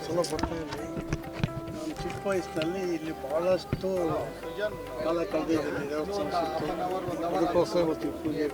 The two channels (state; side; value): identical; both; correlation 1.00